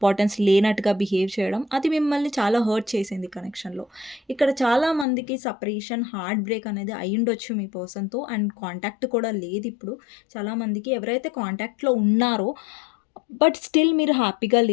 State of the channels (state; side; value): drops out; right; at 5.1 s